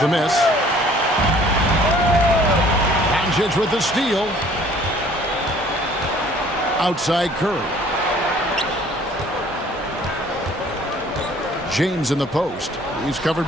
miss. Doncic with the steal. Outside Curry. James in the post. He's covered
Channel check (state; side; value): normal; both; correlation 0.55